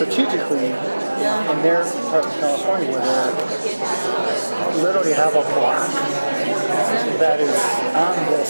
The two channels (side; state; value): both; inverted; correlation -1.00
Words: in their part of California, where they literally have a block that is on